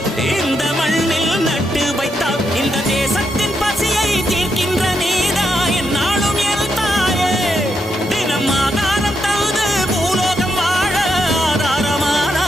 இந்த மண்ணில் நட்டு வைத்தால் இந்த தேசத்தின் பசியை தீர்க்கின்ற நீதா என்னாலும் என் தாயே. தினம் ஆதாரம் தந்து பூலோகம் வாழ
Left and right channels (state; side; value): normal; both; correlation 0.81